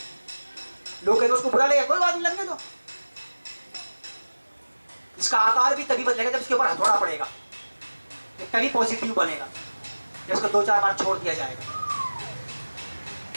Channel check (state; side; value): inverted; both; correlation -1.00